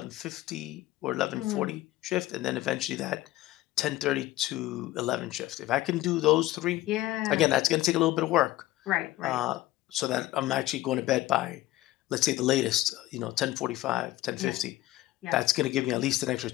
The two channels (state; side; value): quieter; right; 16.4 dB